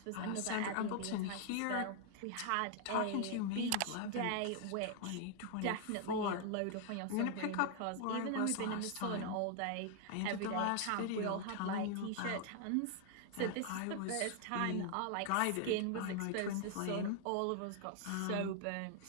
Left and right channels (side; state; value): both; different; correlation 0.00